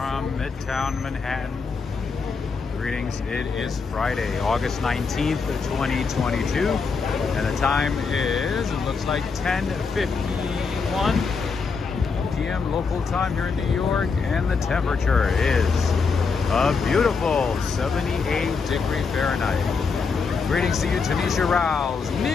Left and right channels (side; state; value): right; quieter; 5.0 dB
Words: Midtown Manhattan. Greetings, it is Friday, August 19th, 2022, and the time is, it looks like 10:51 p.m. local time here in New York, and the temperature is a beautiful 78 Fahrenheit. Greetings to you, Tanisha Rouse,